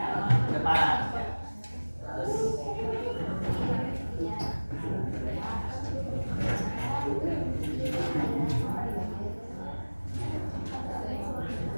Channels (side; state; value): both; inverted; correlation -1.00